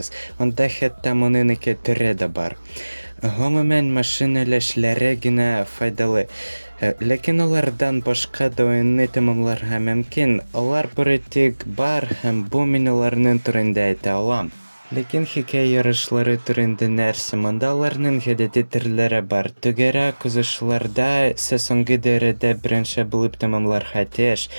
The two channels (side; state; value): both; inverted; correlation -1.00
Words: Анда хәтта моның ике төре дә бар. Гомумән машина эшләре генә файдалы. Ләкин алардан башка да уенны тәмамларга мөмкин. Алар бары тик бар һәм бу мин аларның турында әйтә алам. Ләкин хикәя ярышлары турында нәрсә? Монда аларның гадәти төрләре бар. Түгәрәк узышларда сез соңгы дәрәҗәдә беренче булып тәмамларга тиеш.